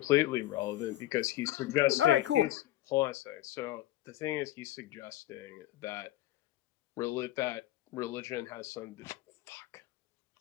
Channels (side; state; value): right; quieter; 15.0 dB